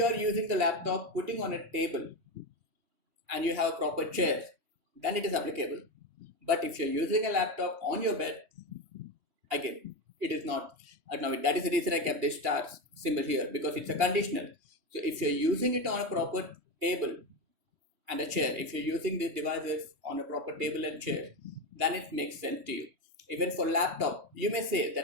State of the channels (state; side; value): late; left; 3.1 ms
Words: are using the laptop putting on a table and you have a proper chair, then it is applicable. But if you're using a laptop on your bed, again, it is not ergonomic. That is the reason I kept this star symbol here, because it's a conditional. So if you're using it on a proper table and a chair, if you're using these devices on a proper table and chair, then it makes sense to you. Even for laptop, you may say